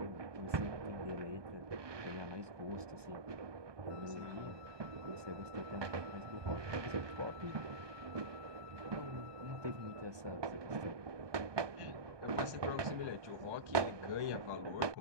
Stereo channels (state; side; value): late; left; 1.2 ms